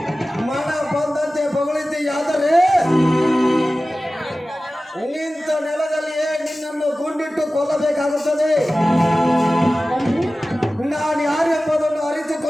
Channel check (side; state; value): both; normal; correlation 0.96